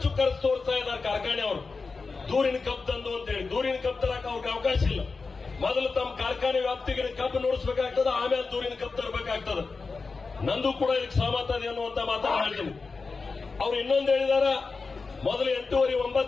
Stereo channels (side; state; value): right; quieter; 4.3 dB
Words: ಖರ್ಚು ತೋರಿಸ್ತಾ ಇದ್ದಾರೆ ಕಾರ್ಖಾನೆಯವರು, ದೂರಿನ ಕಬ್ಬು ತಂದು ಅಂತೇಳಿ. ದೂರಿನ ಕಬ್ಬು ತರಕ ಅವ್ರಿಗೆ ಅವಕಾಶ ಇಲ್ಲ. ಮೊದಲು ತಮ್ಮ ಕಾರ್ಖಾನೆ ವ್ಯಾಪ್ತಿಗೆ ಕಬ್ಬು ನೋಡಿಸಬೇಕಾಗ್ತದೆ, ಆಮೇಲೆ ದೂರಿನ ಕಬ್ಬು ತರಬೇಕಾಗ್ತದೆ. ನಂದು ಕೂಡ ಇದಕ್ಕೆ ಸಹಮತ ಇದೆ ಅನ್ನುವಂತ ಮಾತನ್ನು ಹೇಳ್ತೀನಿ. ಅವ್ರು ಇನ್ನೊಂದು ಹೇಳಿದಾರ, ಮೊದಲು